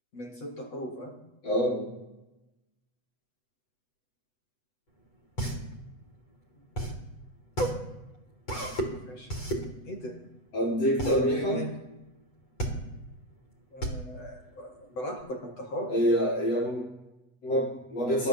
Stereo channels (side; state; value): right; late; 8.0 ms